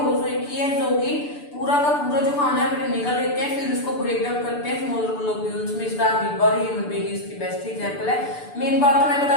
की है, जो कि पूरा का पूरा जो खाना है निकल लेते हैं, फिर उसको ब्रेक डाउन करते हैं स्मॉलर ग्लोब्यूल्स में। इसका अमीबा और ह्यूमन बीइंग इसकी बेस्ट एग्जांपल है। मेन बात तो मैं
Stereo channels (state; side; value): late; right; 6.9 ms